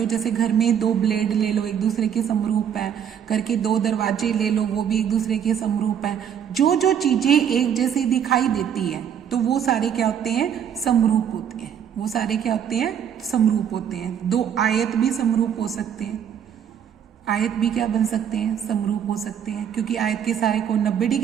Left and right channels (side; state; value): left; quieter; 8.6 dB